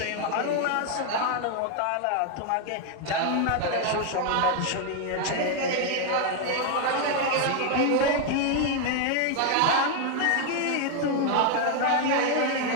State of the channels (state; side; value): different; both; correlation 0.01